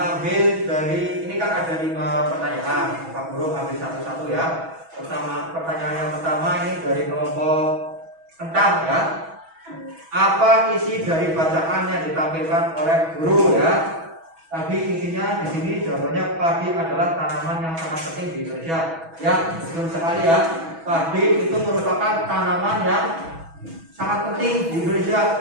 dari ini kan ada 5 pertanyaan. Pak Guru ambil satu-satu ya. Pertanyaan yang pertama ini dari kelompok kentang ya. Apa isi dari bacaan yang ditampilkan oleh guru ya? Tadi intinya di sini jawabannya padi adalah tanaman yang sangat penting di Indonesia. Ya, betul sekali ya. Padi itu merupakan tanaman yang sangat penting di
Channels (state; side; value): late; left; 6.1 ms